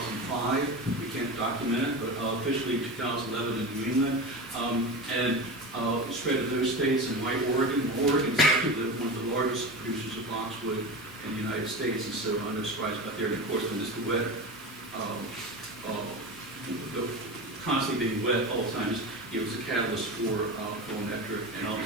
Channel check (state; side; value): normal; both; correlation 0.26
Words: We can't document it, but officially 2011 in New England. And it spread to those states and white Oregon. Oregon is actually one of the largest producers of boxwood in the United States, and so I'm no surprise about there. And of course, when it's the wet, constantly being wet all the time, it was a catalyst for full nectar and all